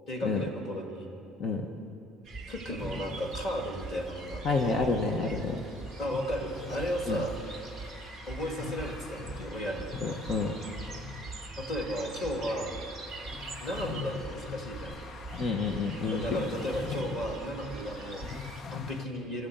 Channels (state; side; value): normal; both; correlation 0.58